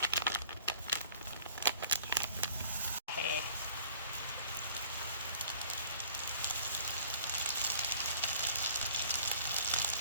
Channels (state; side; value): inverted; both; correlation -0.52